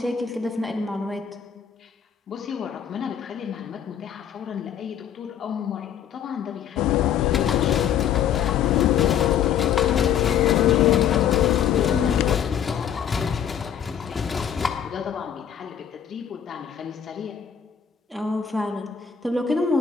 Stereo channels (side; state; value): right; quieter; 8.7 dB